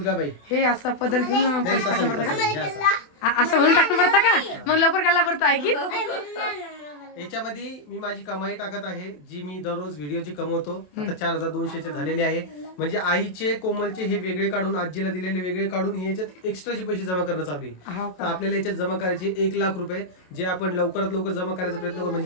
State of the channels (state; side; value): late; right; 27 ms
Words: हे असं पद्धतीनं पैसे टाकणं पडतं का? हे असं. असं म्हणून टाकणं पडतं का? मग लवकर घालला पडतो आहे की? याच्यामध्ये मी माझी कमाई टाकत आहे, जी मी दररोज व्हिडिओची कमवतो. आता 4200 झालेले आहे. म्हणजे आईचे कोमलचे हे वेगळे काढून, आजीला दिलेले वेगळे काढून हे याच्यात एक्स्ट्राचे पैसे जमा करणं चालू आहे. हो तर का? आपल्याला याच्यात जमा करायचे 1 लाख रुपये, जे आपण लवकरात लवकर जमा करायचा प्रयत्न करू.